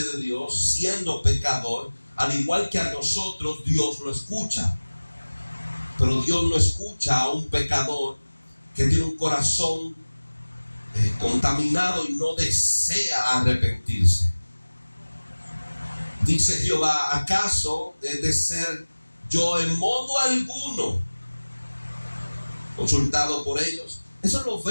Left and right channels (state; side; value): inverted; both; correlation -1.00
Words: Dios siendo pecador. Al igual que a nosotros, Dios lo escucha. Pero Dios no escucha a un pecador que tiene un corazón contaminado y no desea arrepentirse. Dice Jehová: ¿acaso he de ser yo en modo alguno consultado por ellos? Eso lo